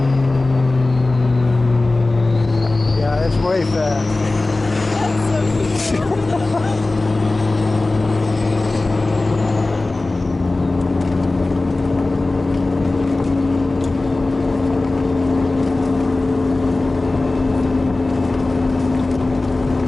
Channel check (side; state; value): right; quieter; 3.1 dB